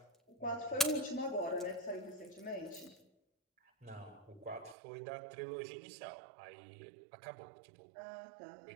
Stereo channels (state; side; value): drops out; left; at 4.8 s